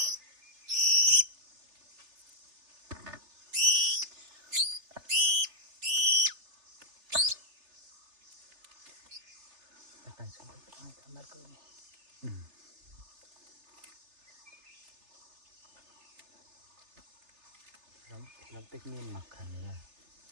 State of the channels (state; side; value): late; left; 3.3 ms